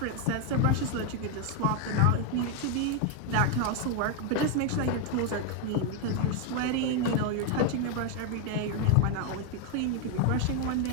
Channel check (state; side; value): different; both; correlation 0.01